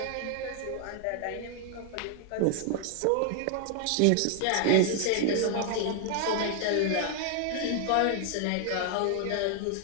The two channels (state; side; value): different; both; correlation 0.00